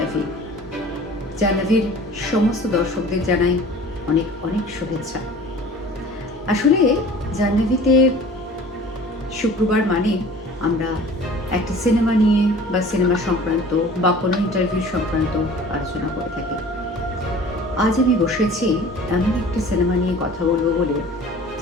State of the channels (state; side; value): normal; both; correlation 0.45